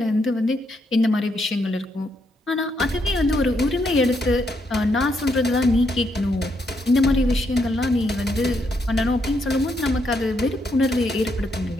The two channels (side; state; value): both; normal; correlation 0.77